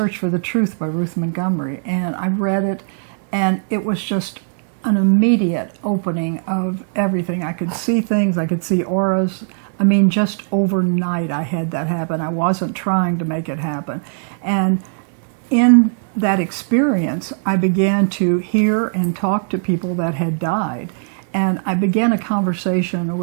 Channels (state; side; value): silent; left; 67 dB below the other